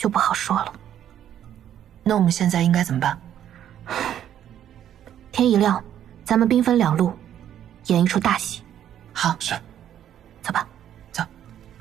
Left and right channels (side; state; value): left; quieter; 10.5 dB